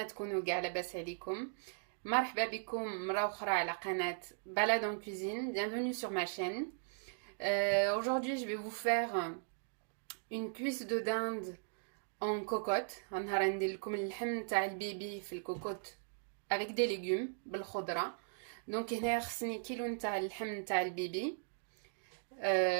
تكونوا كاع لاباس عليكم. مرحبا بكم مرة أخرى على قناة Balade en cuisine. Bienvenue sur ma chaîne. Aujourd'hui, je vais vous faire une cuisse de dinde en cocotte. غنهار ندير لكم اللحم تاع البيبي في الكوكوت avec des légumes بالخضرة. دونك هنايا خصني كيلو نتاع اللحم تاع البيبي.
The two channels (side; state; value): left; silent; digital silence